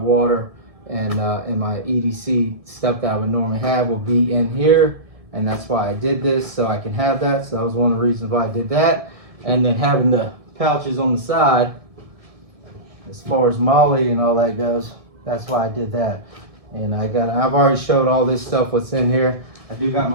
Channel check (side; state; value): left; late; 1.7 ms